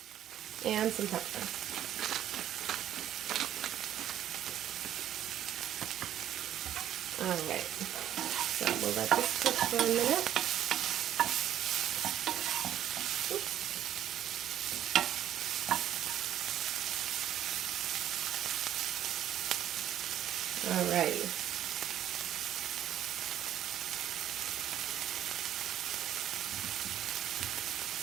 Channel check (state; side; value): quieter; left; 11.3 dB